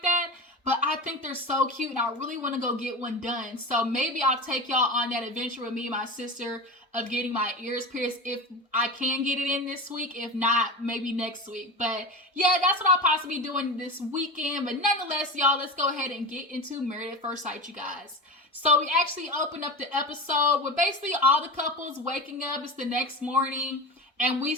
that. But I think they're so cute and I really want to go get one done. So maybe I'll take y'all on that adventure with me and my sister of getting my ears pierced if I can get it in this week. If not, maybe next week. But yeah, that's what I'll possibly be doing this weekend. But nonetheless, y'all, let's go ahead and get into Married at First Sight, you guys. So we actually opened up the episode with basically all the couples waking up. It's the next morning. And we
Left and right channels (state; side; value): normal; both; correlation 0.27